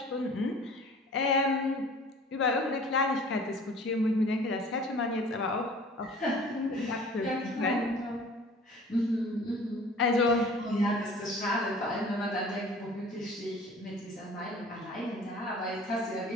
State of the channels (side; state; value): both; normal; correlation 0.47